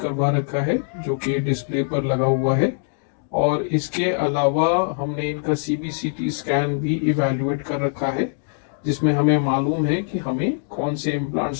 रखा है जो कि डिस्प्ले पर लगा हुआ है, और इसके अलावा हमने इनका सीबीसीटी स्कैन भी इवैल्यूएट कर रखा है जिसमें हमें मालूम है कि हमें कौन से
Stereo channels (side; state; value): right; silent; digital silence